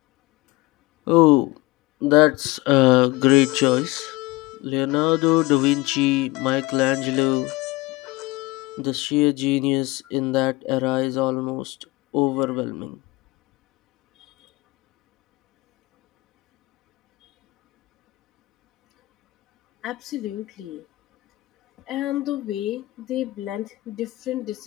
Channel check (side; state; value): right; quieter; 20.8 dB